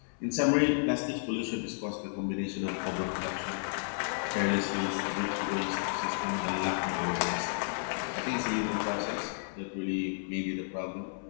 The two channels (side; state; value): right; silent; 56 dB below the other